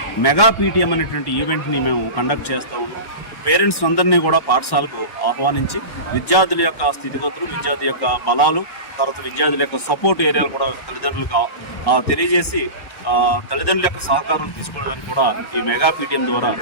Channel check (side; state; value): right; late; 1.1 ms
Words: మెగా పీటీఎం అనేటువంటి ఈవెంట్ని మేము కండక్ట్ చేస్తూ ఉన్నాం. పేరెంట్స్ అందరినీ కూడా పాఠశాలకు ఆహ్వానించి విద్యార్థుల యొక్క స్థితిగతులు, విద్యార్థి యొక్క బలాలు, తర్వాత విద్యార్థుల యొక్క సపోర్ట్ ఏరియాలు కూడా తల్లిదండ్రులకు తెలియజేసి తల్లిదండ్రుల యొక్క సహకారం తీసుకోవడానికి కూడా ఈ మెగా పీటీఎం ద్వారా